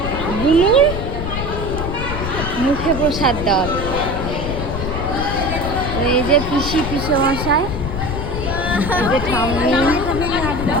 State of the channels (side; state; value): left; noise; rumble, 4 dB below the sound